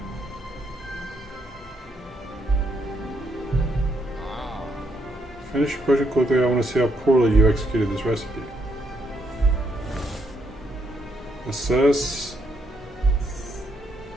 Finish your project quickly. I want to see how poorly you executed this recipe. Assess.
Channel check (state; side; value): normal; both; correlation 0.75